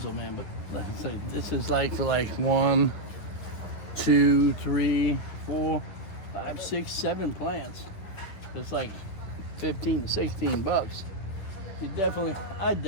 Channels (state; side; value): late; right; 10 ms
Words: man, but this is like for like 1, 2, 3, 4, 5, 6, 7 plants. It's like 15 to 16 bucks. I